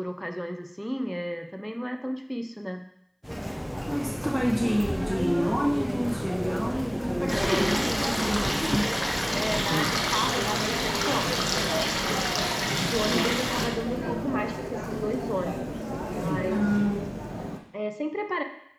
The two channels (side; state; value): both; identical; correlation 1.00